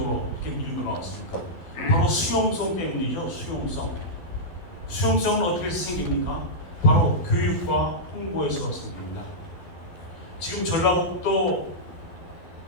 이렇게 밀고 나왔습니까? 바로 수용성 때문이죠. 수용성은 어떻게 생깁니까? 바로 교육과 홍보에서 생깁니다. 지금 전라북도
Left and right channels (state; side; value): late; right; 12 ms